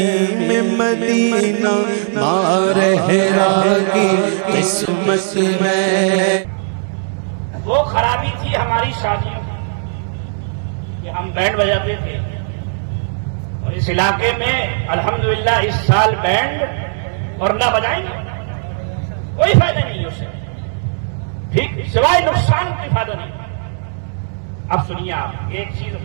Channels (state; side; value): silent; left; digital silence